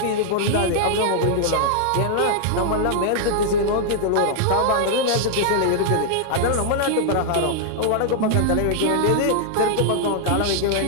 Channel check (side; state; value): both; different; correlation -0.01